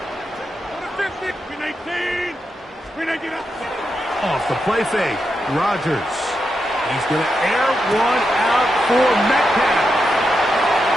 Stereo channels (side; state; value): both; normal; correlation 0.86